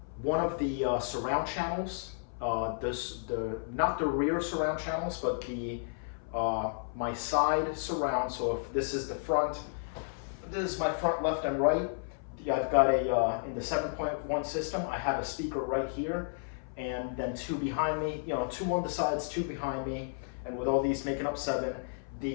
of the surround channels, not the rear surround channels, but my side surround. So if this is the front, this is my front, left, and right. I've got in the 7.1 system, I have a speaker right here, and then two behind me, two on the sides, two behind me, and with all these making up 7,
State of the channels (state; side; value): silent; right; 56 dB below the other